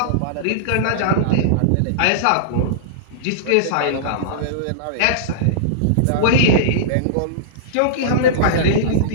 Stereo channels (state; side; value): different; both; correlation -0.02